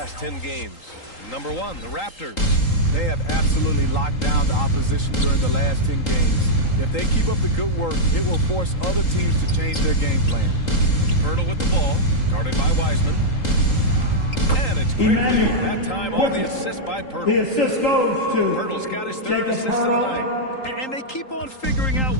10 games. Number 1, the Raptors. They have absolutely locked down the opposition during the last 10 games. If they keep up the good work, it will force other teams to change their game plan. Pirtle with the ball, guarded by Wiseman. And it's Quickly, that time on the assist by Pirtle. The assist goes to Pirtle's got his 3rd assist of the night. And they keep on figuring out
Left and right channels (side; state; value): right; late; 3.8 ms